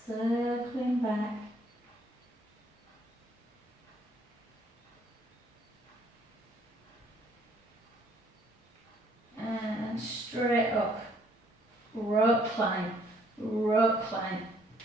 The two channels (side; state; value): both; normal; correlation 0.64